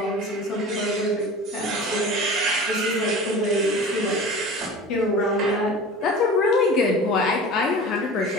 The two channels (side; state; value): both; normal; correlation 0.37